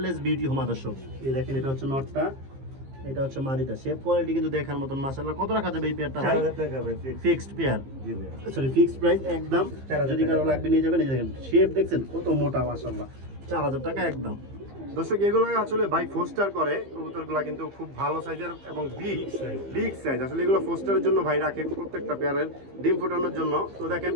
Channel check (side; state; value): left; late; 15 ms